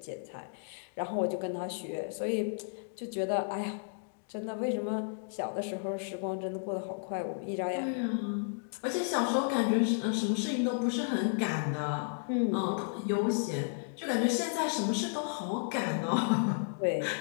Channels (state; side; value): silent; right; digital silence